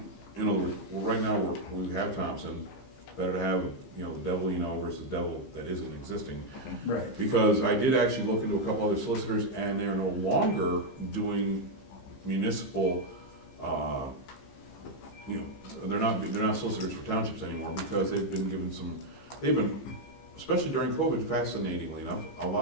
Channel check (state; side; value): late; right; 15 ms